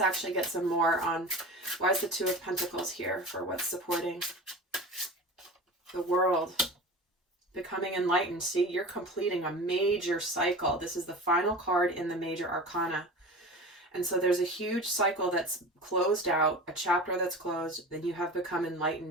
actually get some more on why is the 2 of Pentacles here for what's supporting the world. Becoming enlightened. See, you're completing a major cycle. This is the final card in the major arcana. And so there's a huge cycle that's closed out, a chapter that's closed, then you have become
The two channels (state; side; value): normal; both; correlation 0.33